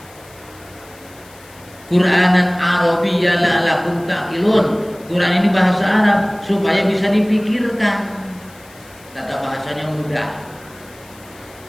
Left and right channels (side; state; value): left; noise; hiss, 24 dB below the sound